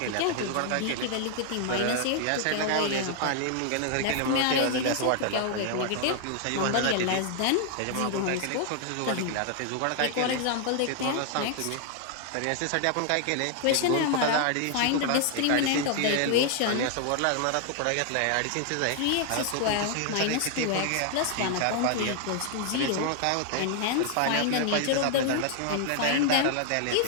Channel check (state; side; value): different; both; correlation 0.00